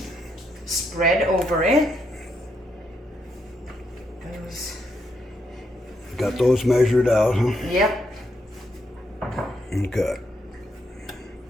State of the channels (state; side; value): normal; both; correlation 0.78